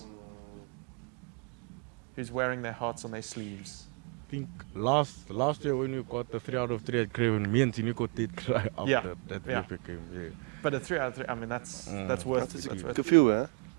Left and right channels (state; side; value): quieter; left; 35.2 dB